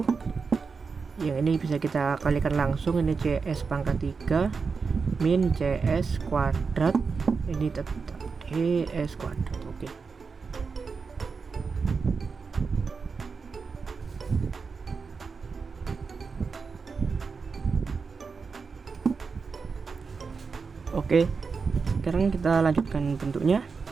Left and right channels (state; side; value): quieter; left; 5.0 dB